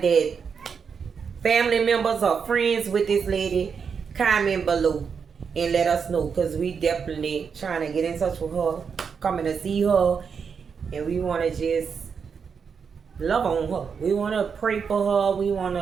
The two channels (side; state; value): left; quieter; 6.2 dB